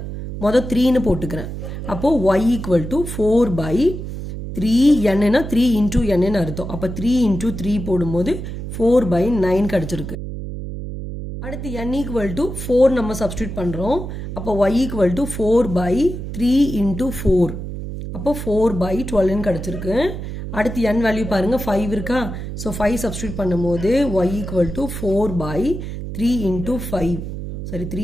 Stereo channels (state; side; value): noise; right; hum, 7 dB below the sound